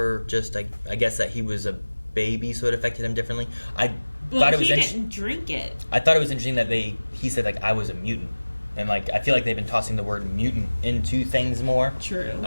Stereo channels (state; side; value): inverted; both; correlation -1.00